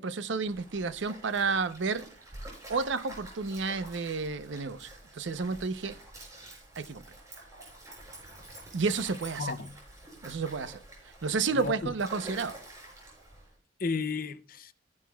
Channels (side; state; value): left; quieter; 3.1 dB